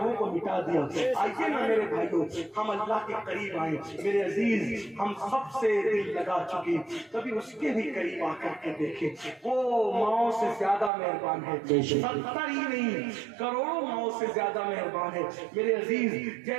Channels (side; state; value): left; drops out; at 10.9 s